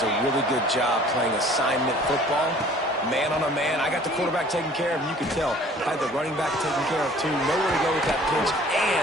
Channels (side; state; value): both; normal; correlation 0.52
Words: a really good job playing assignment football, man on a man. I got the quarterback taken care of, and you can tell I had the running back taken care of too. Nowhere to go with that pitch,